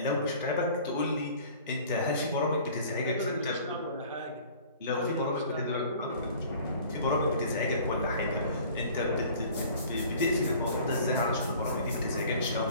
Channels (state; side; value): inverted; both; correlation -0.48